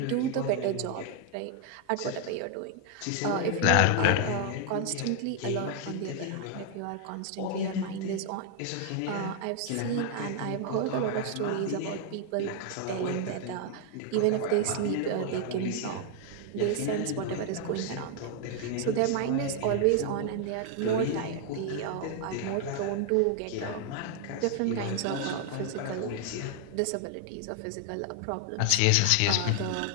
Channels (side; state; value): both; different; correlation 0.00